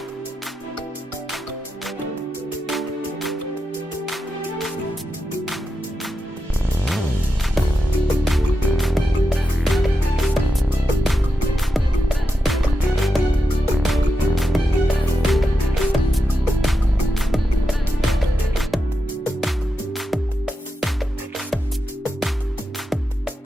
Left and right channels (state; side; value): normal; both; correlation 0.88